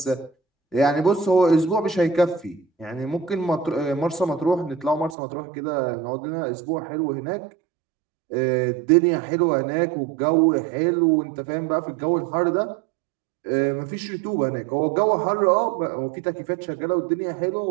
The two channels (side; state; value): left; drops out; at 5.2 s